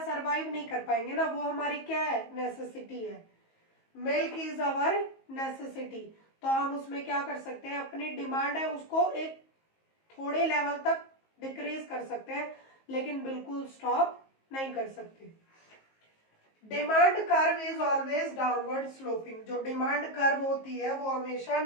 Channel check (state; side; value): late; right; 19 ms